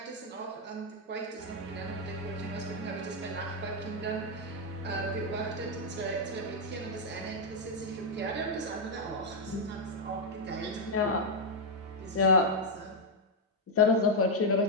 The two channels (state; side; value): normal; both; correlation -0.01